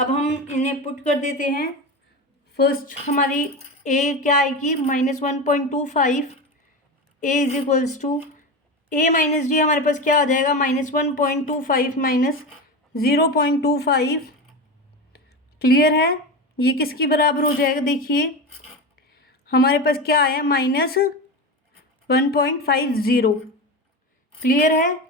हम इन्हें पुट कर देते हैं। फर्स्ट हमारी A क्या आएगी, -1.25, A is equals to A minus D हमारे पास क्या आ जाएगा, -1.25 माइनस 0.25। क्लियर है। ये किसके बराबर हो जाएगा, देखिए हमारे पास क्या आया, -1.50। क्लियर है।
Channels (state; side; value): normal; both; correlation 0.22